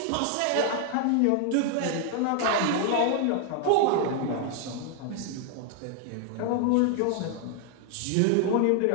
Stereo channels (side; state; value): both; different; correlation 0.00